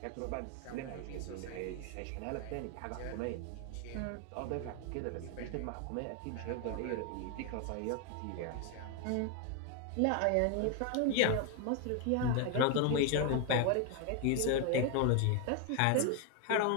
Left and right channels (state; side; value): different; both; correlation 0.01